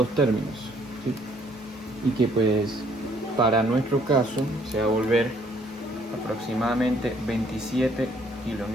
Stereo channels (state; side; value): normal; both; correlation 0.64